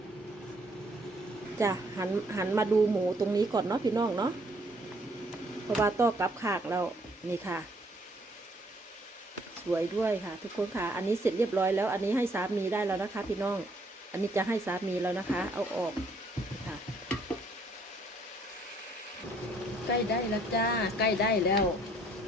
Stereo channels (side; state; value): both; normal; correlation 0.65